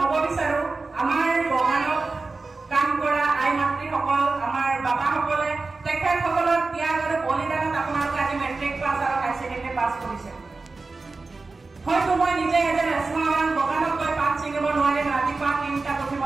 বিচাৰো আমাৰ বগানত কাম কৰা আই মাতৃ সকল আমাৰ বাবা সকলে তেখেতসকলৰ ত্যাগ আৰু বলিদানত আপোনালোকে আজি মেট্ৰিক পাছ আৰু হাই সেকেন্ডাৰী পাছ কৰিছে। হয়তো মই নিজে এজন এছমাৱান বগানত গৈ পাত ছিঙিব নোৱাৰিম, ৰাতিপুৱা ৩টা উঠি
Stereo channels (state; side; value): quieter; left; 3.8 dB